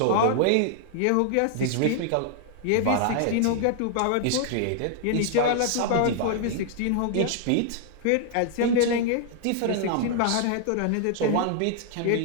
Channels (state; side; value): different; both; correlation 0.00